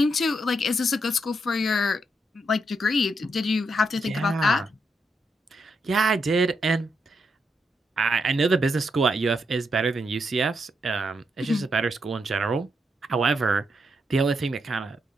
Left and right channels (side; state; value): both; normal; correlation 0.81